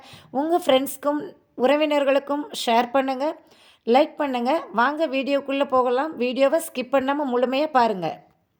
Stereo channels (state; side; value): identical; both; correlation 1.00